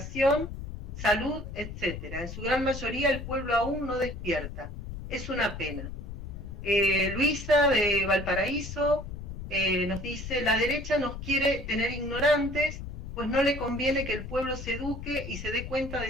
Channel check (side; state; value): left; noise; rumble, 9 dB below the sound